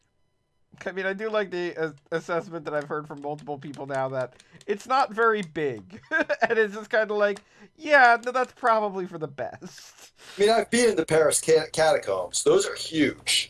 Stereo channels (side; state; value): both; identical; correlation 1.00